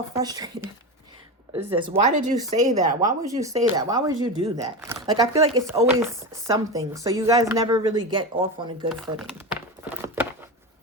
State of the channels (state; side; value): normal; both; correlation 0.21